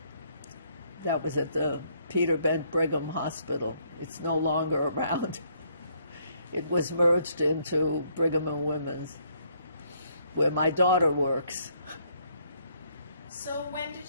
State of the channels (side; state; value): both; inverted; correlation -0.68